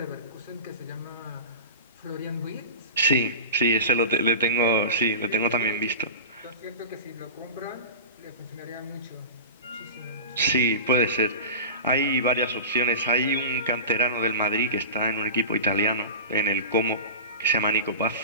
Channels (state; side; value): inverted; both; correlation -0.31